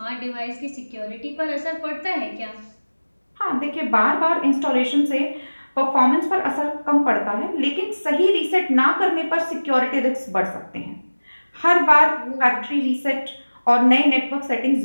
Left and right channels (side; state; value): both; inverted; correlation -1.00